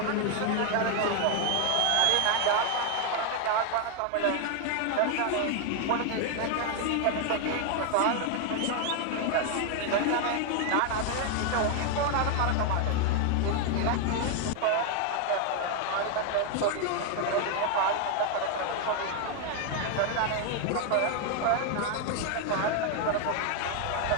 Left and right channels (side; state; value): both; different; correlation 0.01